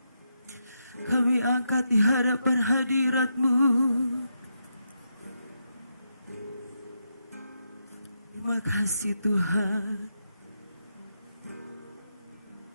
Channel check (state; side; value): inverted; both; correlation -0.83